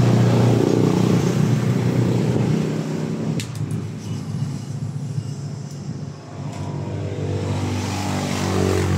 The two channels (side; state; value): both; identical; correlation 1.00